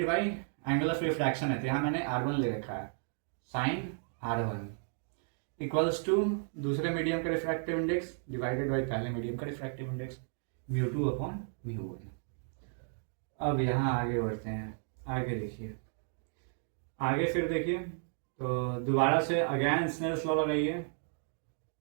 by angle of refraction है, तो यहाँ मैंने R1 ले रखा है, साइन R1 इक्वल्स टू दूसरे मीडियम का रिफ्रैक्टिव इंडेक्स डिवाइडेड बाई पहले मीडियम का रिफ्रैक्टिव इंडेक्स μ2 अपॉन μ1। अब यहाँ आगे बढ़ते हैं, आगे देखिए, आगे फिर देखिए। तो दोबारा से अगेन स्नेल्स लॉ लगाइए,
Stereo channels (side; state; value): left; silent; 55 dB below the other